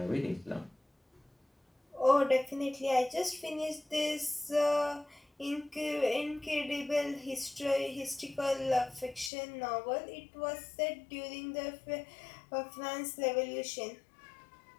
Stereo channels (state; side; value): drops out; right; at 9.3 s